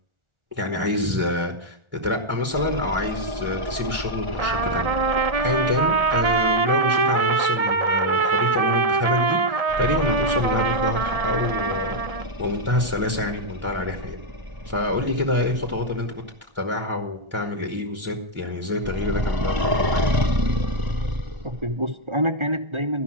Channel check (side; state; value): left; late; 1.4 ms